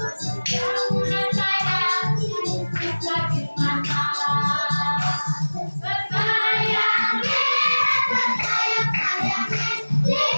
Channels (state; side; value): inverted; both; correlation -1.00